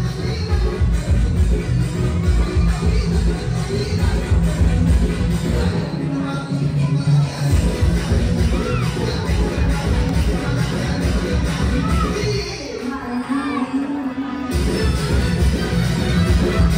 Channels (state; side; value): identical; both; correlation 1.00